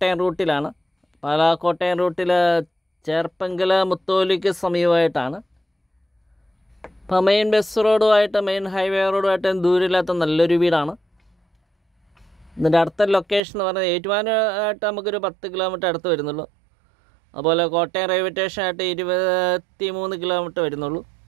റൂട്ടിലാണ്. പാലാ കോട്ടയം റൂട്ടിൽ ചേർപ്പങ്കൽ മുത്തോലിക്ക് സമീപമായിട്ടാണ്. ഇപ്പോൾ മെയിൻ ബസ് റോഡുമായിട്ട് മെയിൻ ഹൈവേ റോഡുമായിട്ട് ദൂരമില്ലാത്ത നല്ലൊരു വീടാണ്. ഇതിൻ്റെ അടുത്ത ലൊക്കേഷൻ എന്ന് പറയുന്നത് ഏറ്റുമാനമായിട്ട് നമുക്കൊരു 10 കിലോമീറ്റർ അടുത്ത് വരുന്നുള്ളൂ. അതുപോലെ കോട്ടയം റെയിൽവേ സ്റ്റേഷനായിട്ട് 23 കിലോമീറ്റർ വരുന്നുള്ളൂ.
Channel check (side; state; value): left; drops out; at 13.4 s